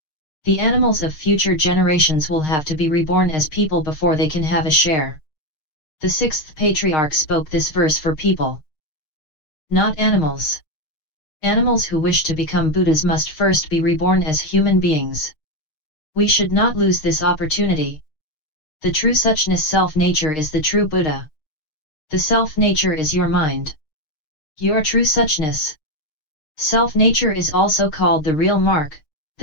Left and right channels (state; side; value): late; right; 6.5 ms